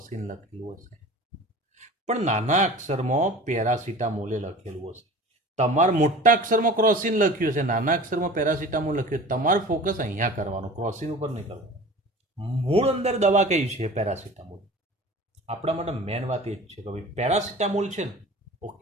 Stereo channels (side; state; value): both; normal; correlation 0.40